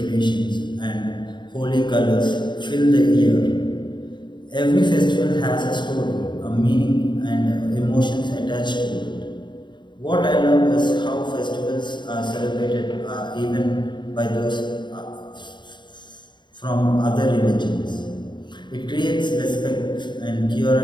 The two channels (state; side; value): late; right; 0.22 ms